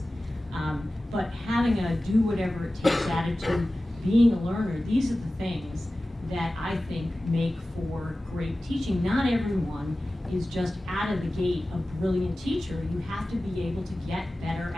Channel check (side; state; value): both; normal; correlation 0.96